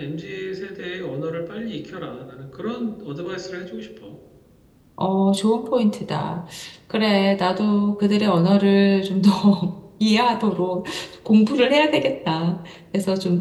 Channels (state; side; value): identical; both; correlation 1.00